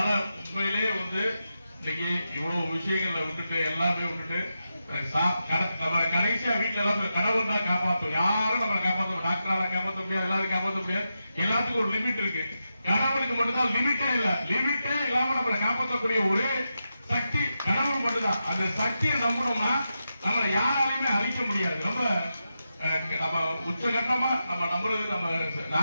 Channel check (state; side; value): inverted; both; correlation -0.89